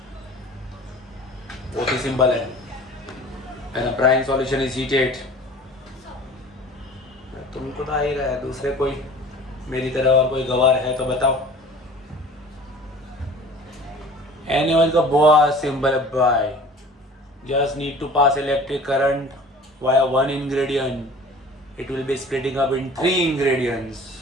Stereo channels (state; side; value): normal; both; correlation 0.44